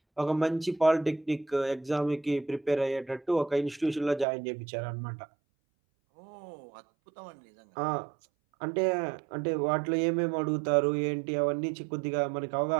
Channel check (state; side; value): drops out; left; at 4.2 s